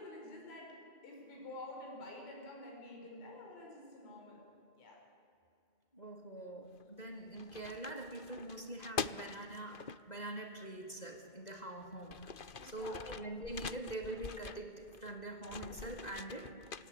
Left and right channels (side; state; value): right; late; 2.5 ms